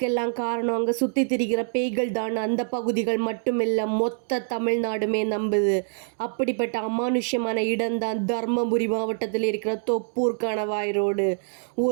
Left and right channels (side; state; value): left; silent; digital silence